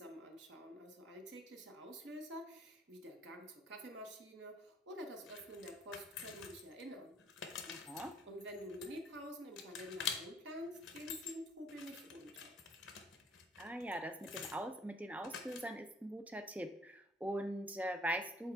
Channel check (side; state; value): both; normal; correlation 0.60